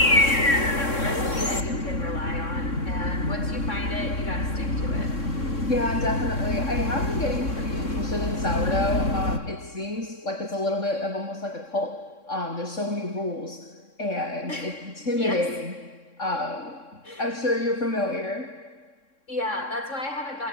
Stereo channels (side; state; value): right; late; 3.6 ms